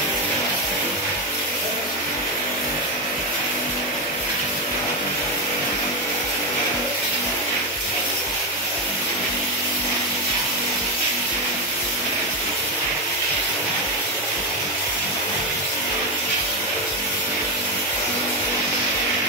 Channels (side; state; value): both; normal; correlation 0.10